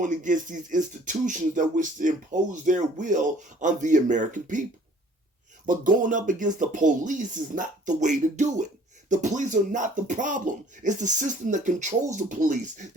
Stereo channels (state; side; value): normal; both; correlation 0.54